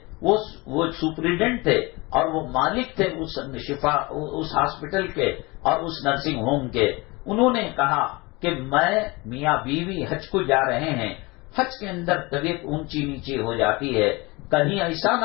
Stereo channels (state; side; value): quieter; right; 24.6 dB